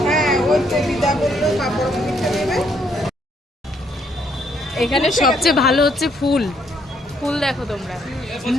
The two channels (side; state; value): both; normal; correlation 0.70